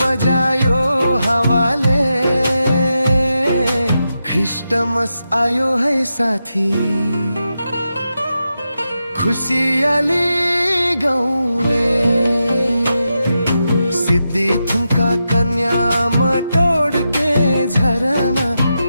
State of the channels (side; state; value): both; inverted; correlation -0.88